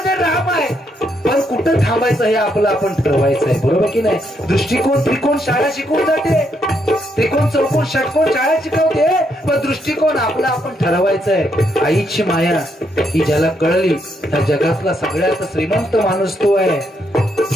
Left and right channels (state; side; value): normal; both; correlation 0.76